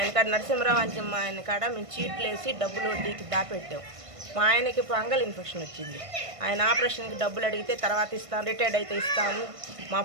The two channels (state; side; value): late; left; 1.5 ms